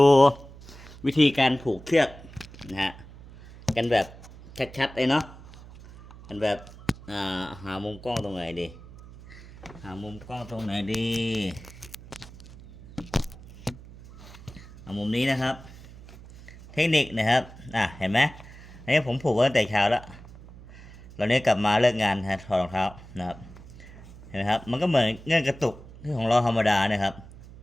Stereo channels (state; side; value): noise; right; hum, 18 dB below the sound